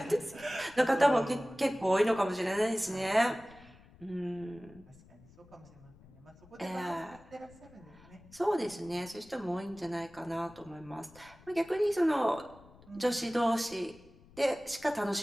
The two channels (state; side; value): noise; left; rumble, 24 dB below the sound